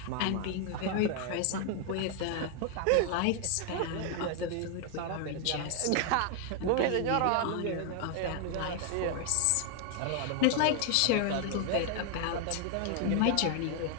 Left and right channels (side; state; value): both; different; correlation 0.00